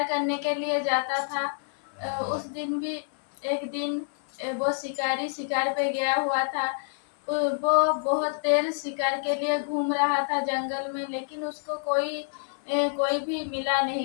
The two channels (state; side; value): silent; right; 56 dB below the other